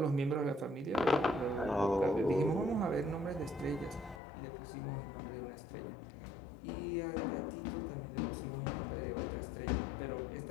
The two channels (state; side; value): drops out; right; at 4.2 s